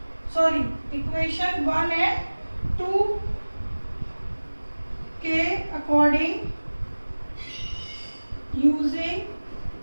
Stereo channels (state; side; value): inverted; both; correlation -1.00